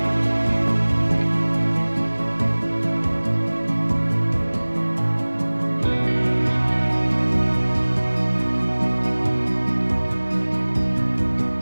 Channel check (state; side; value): inverted; both; correlation -1.00